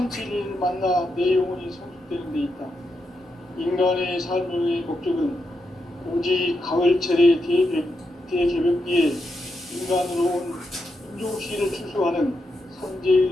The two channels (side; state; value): both; normal; correlation 0.84